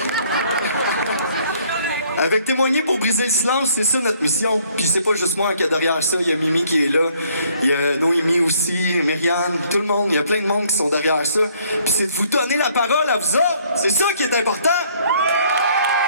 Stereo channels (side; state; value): both; inverted; correlation -0.63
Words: Avec Témoigner pour briser le silence, c'est ça notre mission. Puis c'est pas juste moi qui est derrière ça, il y a Mimi qui est là, il y a Noémie aussi, Myriane, tout le monde, il y a plein de monde qui sont derrière ça. Puis c'est de vous donner la parole à vous autres, c'est ça qui est important.